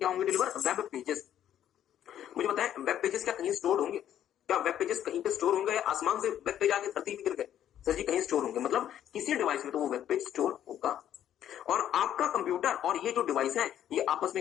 होंगे डिलीवर? Web pages. मुझे बताएं, वेब पेजेस क्या कहीं स्टोर होंगे? क्या वेब पेजेस कहीं पे स्टोर होंगे या आसमान से वेब पेज आके धरती में गिर गए? सर जी, कहीं स्टोर होंगे। मतलब किसी डिवाइस में तो वो वेब पेज स्टोर होगा। और आपका कंप्यूटर और ये जो डिवाइस है ये आपस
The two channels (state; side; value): quieter; right; 10.7 dB